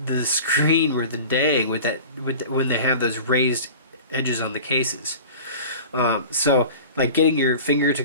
the screen where when they have those raised edges on the cases. So like getting your finger to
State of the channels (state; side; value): inverted; both; correlation -0.37